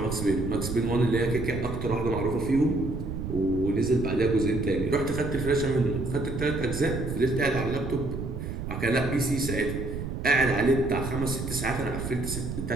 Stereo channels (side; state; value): right; noise; rumble, 6 dB below the sound